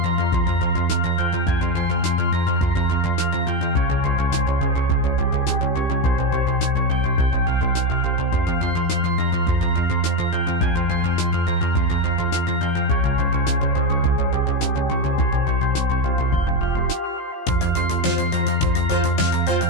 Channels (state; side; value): late; right; 16 ms